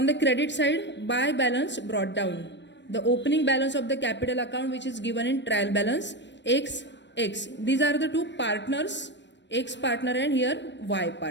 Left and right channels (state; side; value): late; right; 0.52 ms